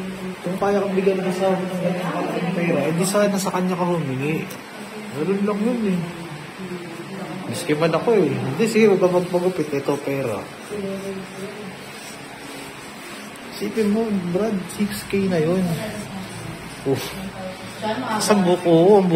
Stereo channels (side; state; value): both; identical; correlation 1.00